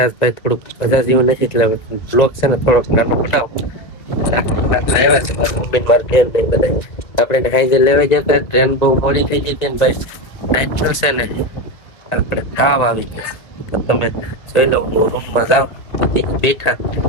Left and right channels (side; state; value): right; late; 2.2 ms